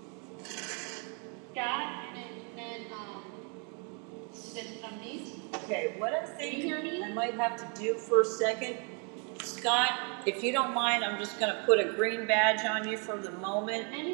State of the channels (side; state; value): left; quieter; 37.9 dB